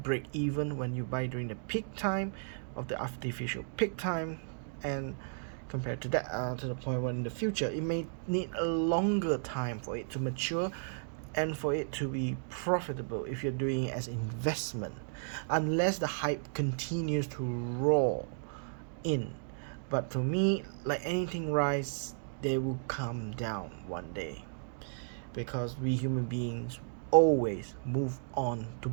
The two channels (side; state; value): left; silent; digital silence